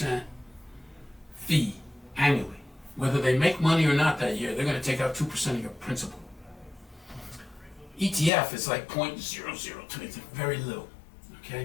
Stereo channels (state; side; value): drops out; right; at 8.3 s